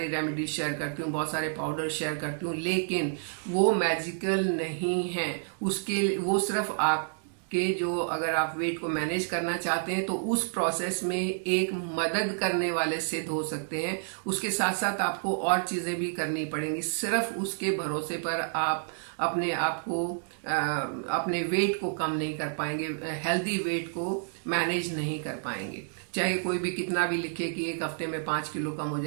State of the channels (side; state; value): left; silent; 58 dB below the other